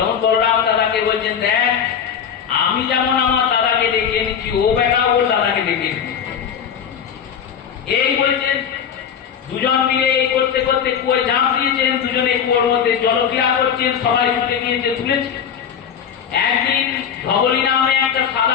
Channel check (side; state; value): right; quieter; 8.0 dB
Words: বলরাম দাদাকে বলছেন, দেখ আমি যেমন আমার দাদাকে ডেকে এনেছি, ও বেটা ওর দাদাকে ডেকে এনেছি। এই বলছেন। দুজন মিলে এই করতে করতে কুয়োয় ঝাঁপ দিয়েছেন। দুজনে কুয়োর মধ্যে জলক্রিয়া করছেন, সবাই ছুটে গিয়েছে, তুলেছে। একদিন ধবলি নামে একটা